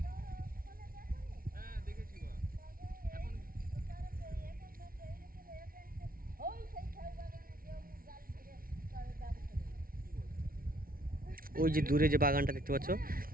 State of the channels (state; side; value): late; left; 0.43 ms